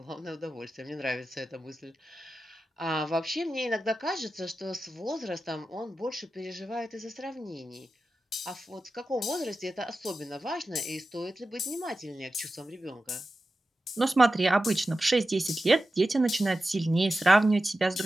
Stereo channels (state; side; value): normal; both; correlation 0.93